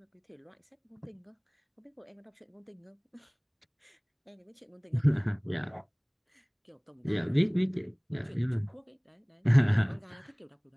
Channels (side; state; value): both; identical; correlation 1.00